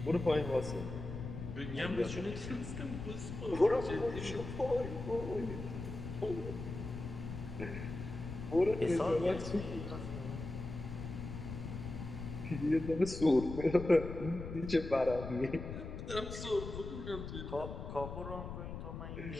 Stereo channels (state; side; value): noise; left; rumble, 8 dB below the sound